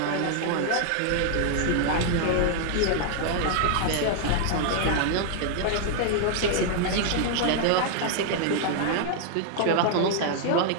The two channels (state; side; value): different; both; correlation 0.00